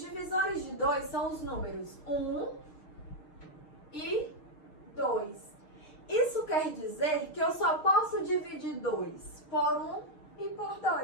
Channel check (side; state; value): right; late; 6.7 ms